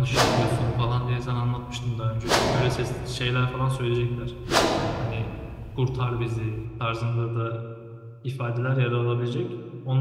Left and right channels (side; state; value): both; identical; correlation 1.00